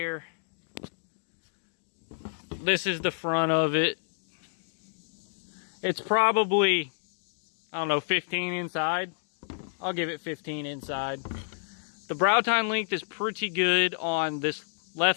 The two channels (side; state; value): right; silent; digital silence